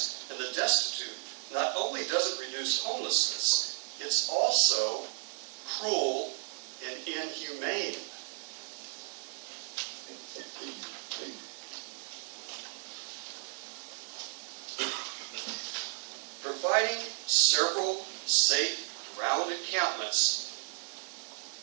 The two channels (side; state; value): left; silent; 55 dB below the other